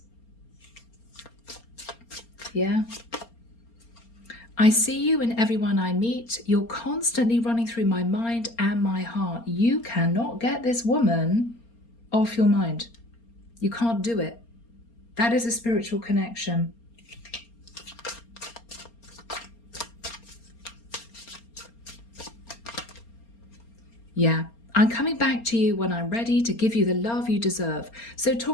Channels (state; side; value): late; right; 4.3 ms